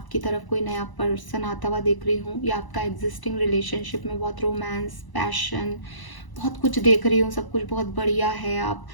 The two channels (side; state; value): right; late; 1.0 ms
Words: तरफ कोई नया पर्सन आता हुआ देख रही हूँ, या आपका एग्जिस्टिंग रिलेशनशिप में बहुत रोमांस, पैशन, बहुत कुछ देख रही हूँ, सब कुछ बहुत बढ़िया है। आप